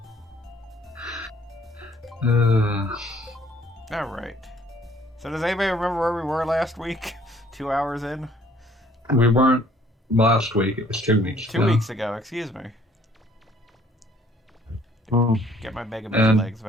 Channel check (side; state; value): both; normal; correlation 0.60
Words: Alright. So does anybody remember where we were last week? 2 hours in? We weren't last week. It was 2 weeks ago. 2 weeks ago, excuse me. Get my Mega Man And- legs